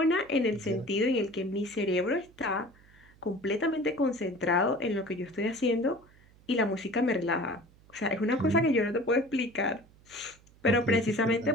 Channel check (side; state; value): right; noise; hum, 27 dB below the sound